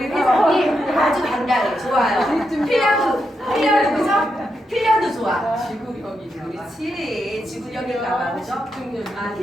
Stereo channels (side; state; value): both; normal; correlation 0.84